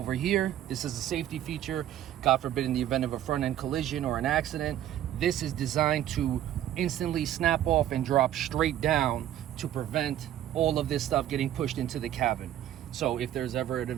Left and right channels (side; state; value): left; quieter; 11.9 dB